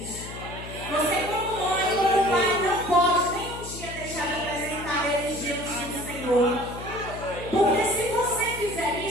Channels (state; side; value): noise; left; hum, 11 dB below the sound